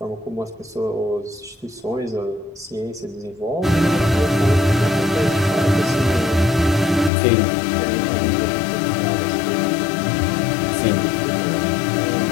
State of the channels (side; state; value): right; drops out; at 7.1 s